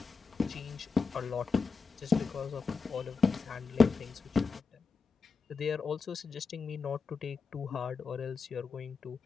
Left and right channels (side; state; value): right; quieter; 4.9 dB